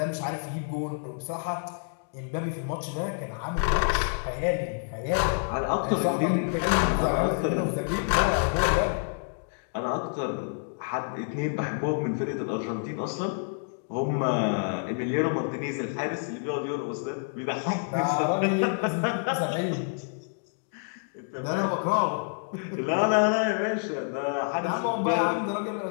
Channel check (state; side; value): silent; right; digital silence